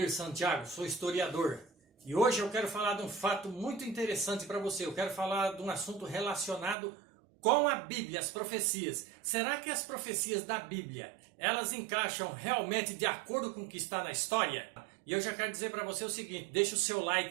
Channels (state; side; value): drops out; left; at 6.8 s